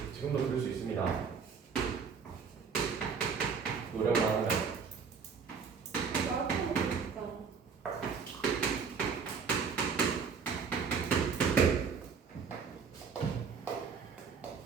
지금도 들을 수 있습니다. 노력을 하면. 마라탕 먹고 싶다.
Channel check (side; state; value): left; quieter; 5.9 dB